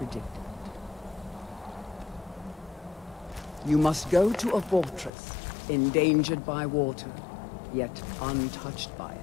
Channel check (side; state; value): right; drops out; at 5.1 s